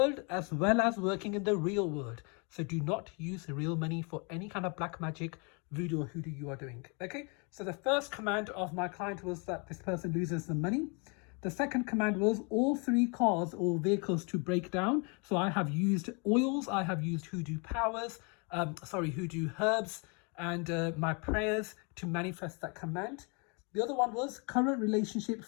as well as working in the real world. So do not use real money for any kind of black magic, voodoo or hoodoo you are doing. Okay, so the first command of my client was that this person loses the money. The second command was all 3 cars or vehicles to break down. So I have used oils, I have used hoodoo powers, hoodoo herbs and my prayers to manifest that command. The other one was current relationship,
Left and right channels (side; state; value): right; quieter; 33.6 dB